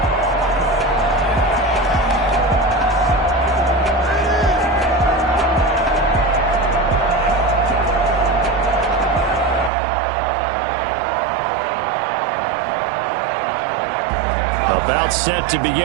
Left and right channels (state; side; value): drops out; left; at 9.7 s